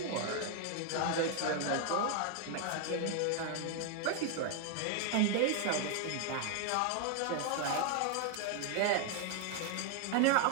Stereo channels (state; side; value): different; both; correlation 0.00